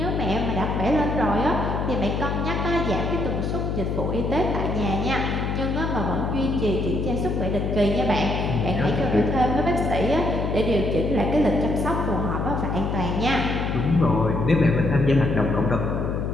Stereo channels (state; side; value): noise; left; hum, 1 dB below the sound